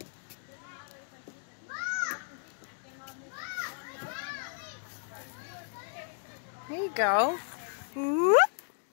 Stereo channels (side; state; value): right; silent; digital silence